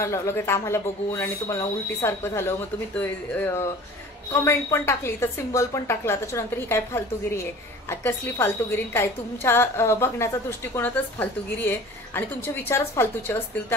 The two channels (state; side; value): normal; both; correlation 0.43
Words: लगेच आम्हाला बघून आणि तुम्हाला उलटी सारखं झालं, मग तुम्ही कमेंट पण टाकली, तर सिम्बॉल पण टाकला, त्याच्यानंतर ही काय फालतूगिरी आहे? कसली फालतूगिरी? काय तुमच्या बघण्याचा दृष्टिकोनातच फालतूगिरी आहे आणि तुमचे विचारच फालतूचे असतील,